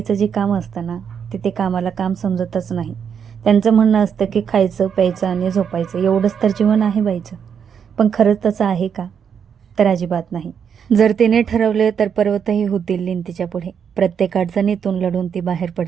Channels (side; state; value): left; quieter; 7.4 dB